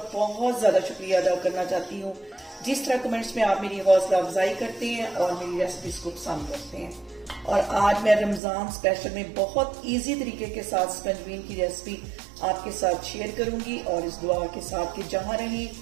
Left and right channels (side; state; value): left; drops out; at 8.4 s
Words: बहुत ज़्यादा शुक्रिया अदा करना चाहती हूँ जिस तरह कमेंट्स में आप मेरी हौसला अफजाई करते हैं और मेरी रेसिपीज को पसंद करते हैं। और आज मैं रमज़ान स्पेशल में बहुत इजी तरीके के साथ स्कंजवीन की रेसिपी आपके साथ शेयर करूंगी और इस दुआ के साथ कि जहाँ रहें